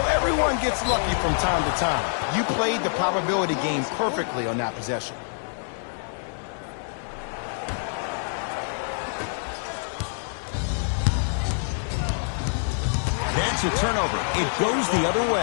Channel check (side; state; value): right; silent; digital silence